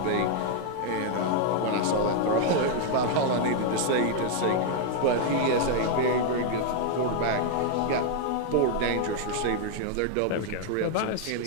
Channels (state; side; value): different; both; correlation 0.00